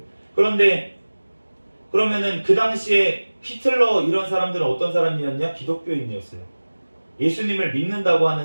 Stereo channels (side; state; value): both; inverted; correlation -1.00